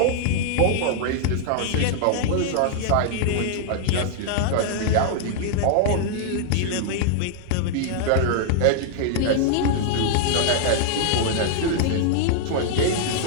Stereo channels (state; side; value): different; both; correlation -0.01